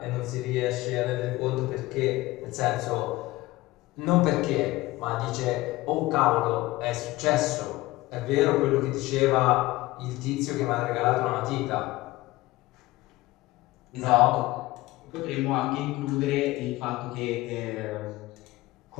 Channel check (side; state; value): right; quieter; 19.0 dB